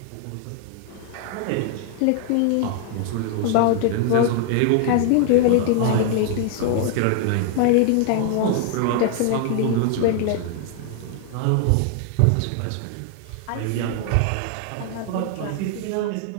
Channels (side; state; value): both; different; correlation 0.00